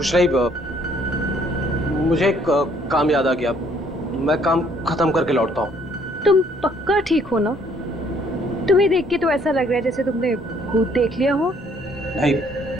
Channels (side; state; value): both; normal; correlation 0.64